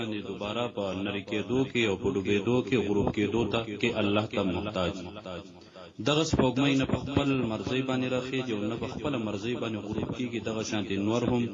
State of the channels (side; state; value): both; identical; correlation 1.00